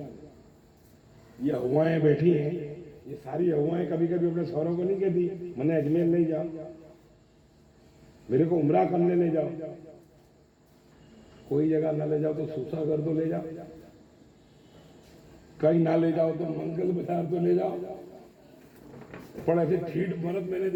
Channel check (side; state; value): both; identical; correlation 1.00